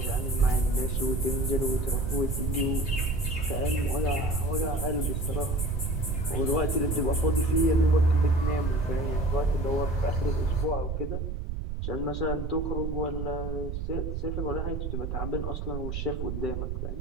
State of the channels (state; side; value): noise; right; rumble, 3 dB below the sound